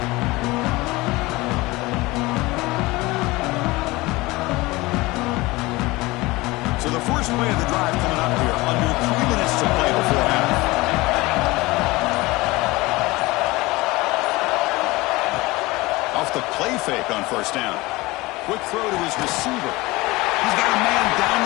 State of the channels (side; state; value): right; quieter; 21.4 dB